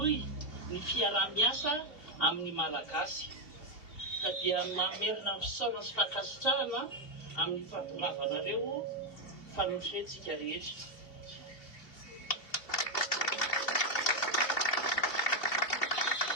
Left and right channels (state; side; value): late; right; 2.7 ms